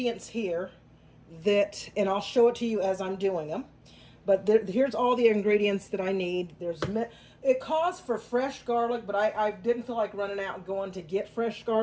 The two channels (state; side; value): identical; both; correlation 1.00